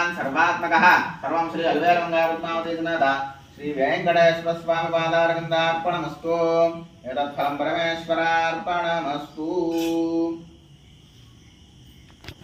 सर्वात्मकः सर्वं श्री अल्वेलमङ्गलपद्मावती समेत श्री वेंकटेश्वर स्वामी पादारविन्दार्पणमस्तु एतत् फलं परमेश्वरार्पणमस्तु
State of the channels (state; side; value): identical; both; correlation 1.00